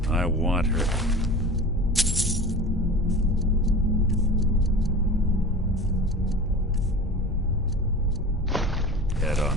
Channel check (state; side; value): normal; both; correlation 0.35